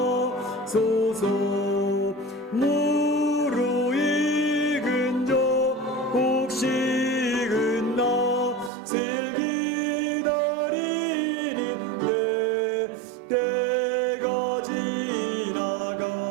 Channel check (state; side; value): drops out; left; at 8.7 s